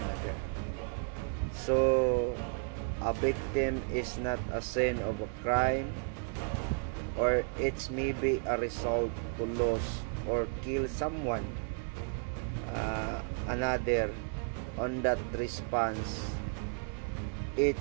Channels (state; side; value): quieter; left; 37.7 dB